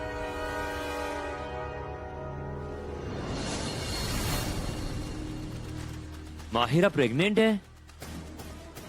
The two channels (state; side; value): identical; both; correlation 1.00